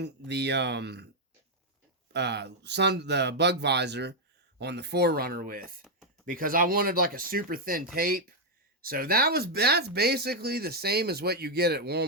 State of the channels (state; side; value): normal; both; correlation 0.00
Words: the the bug visor on the 4Runner with, because I wanted like a super thin tape. So that's basically the same as what you get at